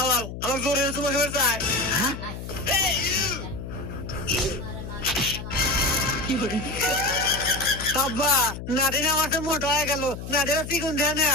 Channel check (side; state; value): left; noise; hum, 9 dB below the sound